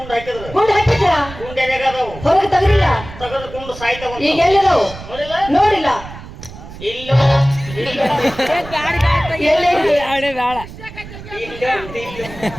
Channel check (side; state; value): right; noise; rumble, 14 dB below the sound